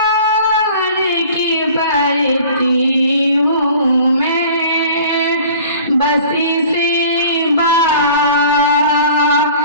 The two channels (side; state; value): both; inverted; correlation -0.47